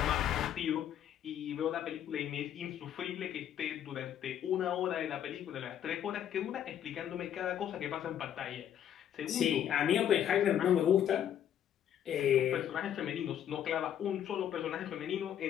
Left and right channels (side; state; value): right; quieter; 10.1 dB